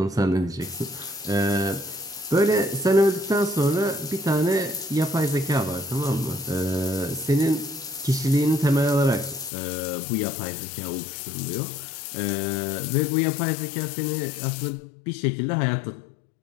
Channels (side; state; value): right; drops out; at 9.5 s